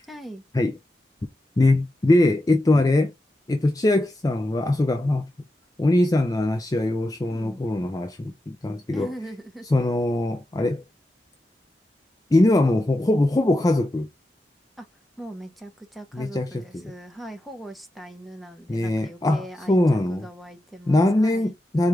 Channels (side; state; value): both; normal; correlation 0.89